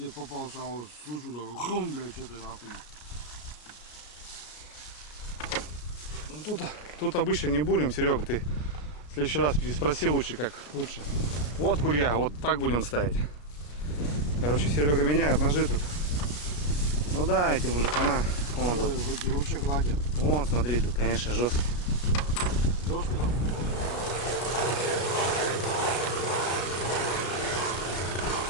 попался, а вот слышу, да, хрум, блядь, что ты нахуй. Ну, тут обычно не бурим, Серега, ты в следующий раз переспроси лучше, как лучше. Вот курья, вот так будем ставить. Короче, Серега меняет ножи тут. Ну да, эти мужикана. Вон тут. Вообще гладят. Вон, смотри, тут, конечно, жестко. Жестко там.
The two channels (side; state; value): right; late; 34 ms